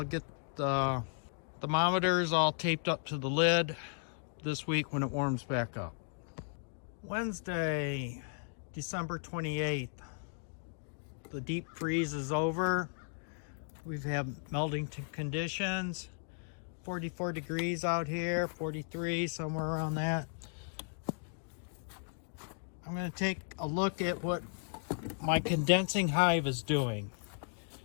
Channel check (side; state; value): right; silent; 54 dB below the other